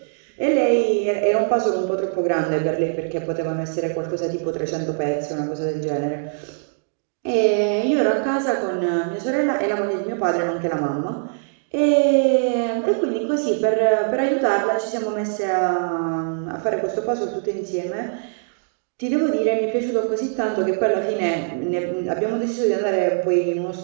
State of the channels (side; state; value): left; silent; digital silence